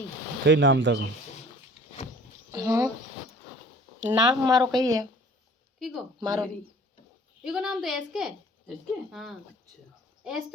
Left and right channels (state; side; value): normal; both; correlation 0.50